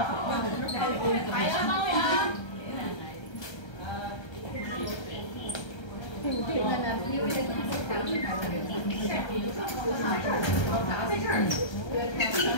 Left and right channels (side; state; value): right; late; 1.3 ms